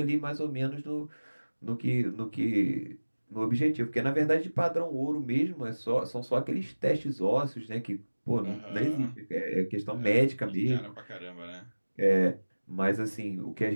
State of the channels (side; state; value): both; inverted; correlation -1.00